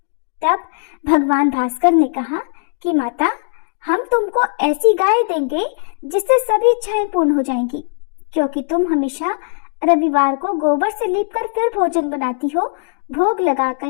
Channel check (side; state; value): right; silent; digital silence